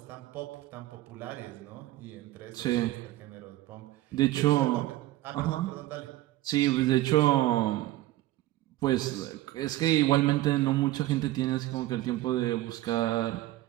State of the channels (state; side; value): quieter; left; 16.2 dB